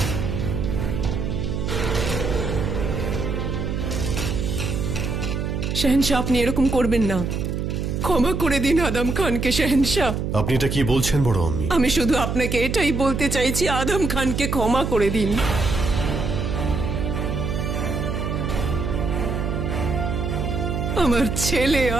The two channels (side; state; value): right; noise; hum, 2 dB below the sound